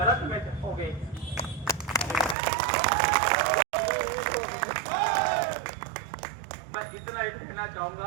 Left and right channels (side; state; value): left; drops out; at 2.4 s